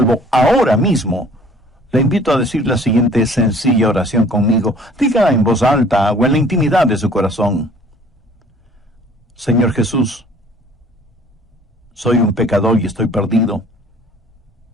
ahora mismo, le invito a decir la siguiente sencilla oración conmigo. Dígala en voz alta o en la intimidad de su corazón. Señor Jesús, soy un pecador y estoy perdido.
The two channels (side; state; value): both; normal; correlation 0.53